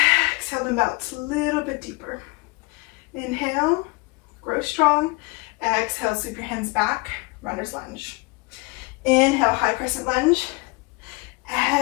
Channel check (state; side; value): quieter; right; 26.7 dB